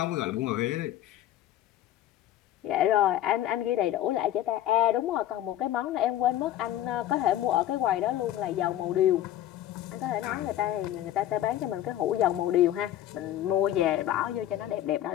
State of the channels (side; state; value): right; quieter; 12.7 dB